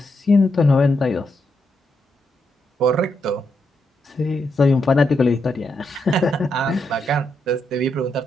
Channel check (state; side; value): normal; both; correlation 0.81